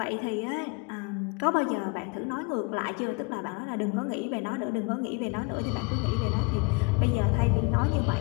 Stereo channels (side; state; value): right; quieter; 29.6 dB